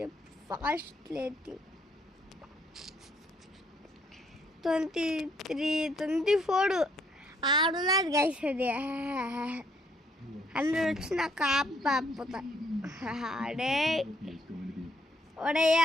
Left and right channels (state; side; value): normal; both; correlation 0.68